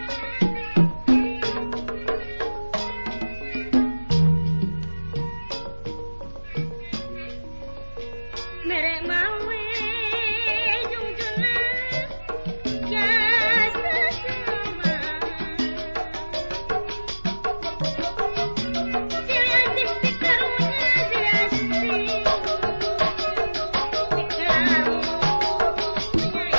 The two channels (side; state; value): both; inverted; correlation -1.00